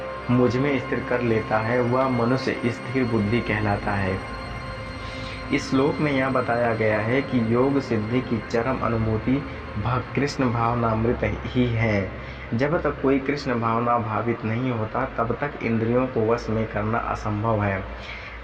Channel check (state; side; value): identical; both; correlation 1.00